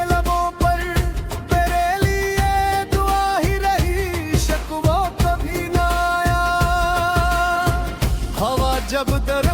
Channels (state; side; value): identical; both; correlation 1.00